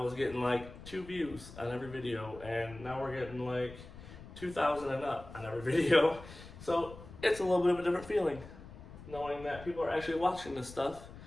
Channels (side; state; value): left; noise; rumble, 16 dB below the sound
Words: getting like 2 views on every video, and now we're getting like 2,000 and up on every video. So it's a little bit of a different feeling knowing that people are actually watching this stuff.